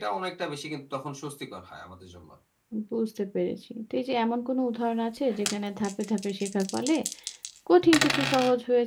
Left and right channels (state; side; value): identical; both; correlation 1.00